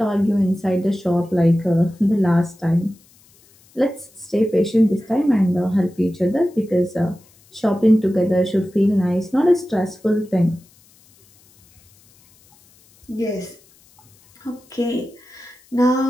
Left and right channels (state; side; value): noise; left; hiss, 30 dB below the sound